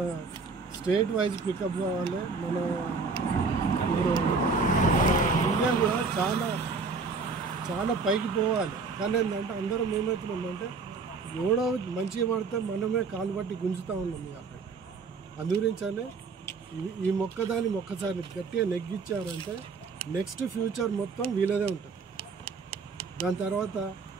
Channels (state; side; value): quieter; left; 4.6 dB